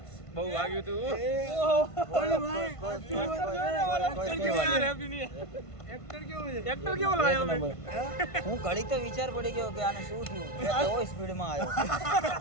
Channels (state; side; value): late; right; 1.5 ms